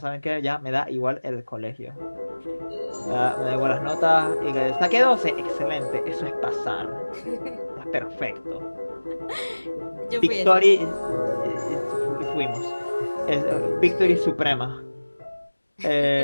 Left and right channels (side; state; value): both; inverted; correlation -1.00